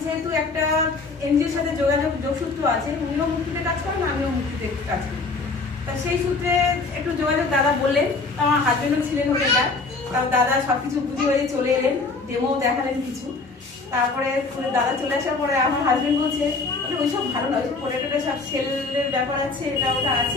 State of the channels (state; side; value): quieter; right; 3.9 dB